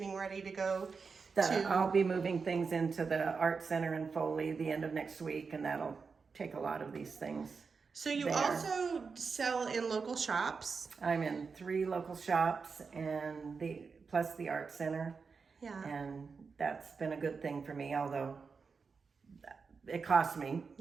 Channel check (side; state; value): left; quieter; 5.1 dB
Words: ready to go I'll be moving things into the art center in Foley the end of next week, and that'll take a lot of these things. So you there. also sell in local shops. I'm in 3 local shops and plus the art center, Yeah. and that's been a good thing for me, although it costs me